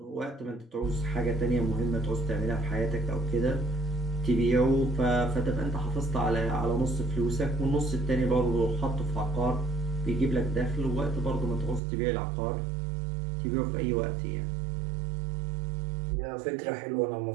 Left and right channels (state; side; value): drops out; left; at 11.8 s